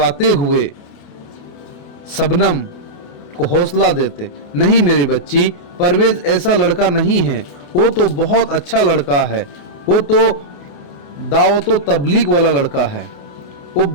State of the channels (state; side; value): late; right; 28 ms